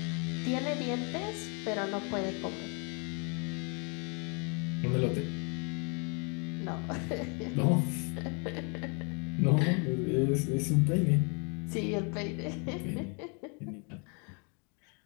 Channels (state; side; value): quieter; right; 35.5 dB